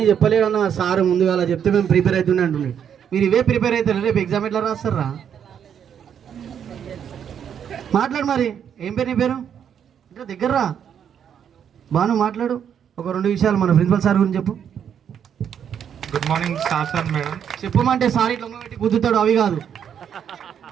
చెప్పలేదన్న సార్, ముందుగా అలా చెప్తే మేము ప్రిపేర్ అవుతుండే అంటుండే. మీరు ఇవే ప్రిపేర్ అవుతారు, రేపు ఎగ్జామ్ ఎట్లా రాస్తారా? మాట్లాడు మరి. ఏం పేరు నీ పేరు? ఇంకా దగ్గర రా బాను, మాట్లాడు. ఒక 2 విషయాలు మన ప్రిన్సిపల్ సార్ గురించి చెప్పు. Good morning sir madam. చెప్పమంటే సార్ ఇట్లా పెట్టి కుదురుతాడు, అవి కాదు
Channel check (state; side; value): quieter; left; 8.4 dB